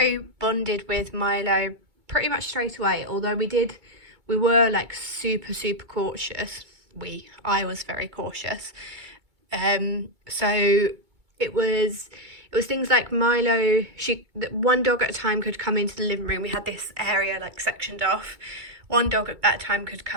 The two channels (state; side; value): late; left; 2.2 ms